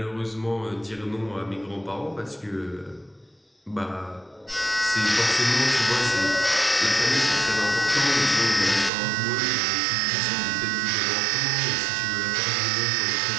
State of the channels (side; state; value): left; drops out; at 8.9 s